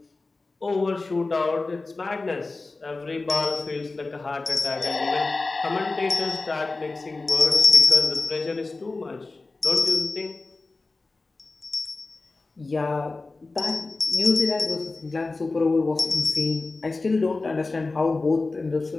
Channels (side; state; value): right; quieter; 3.5 dB